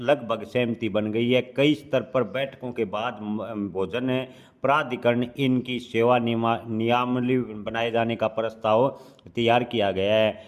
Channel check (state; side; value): identical; both; correlation 1.00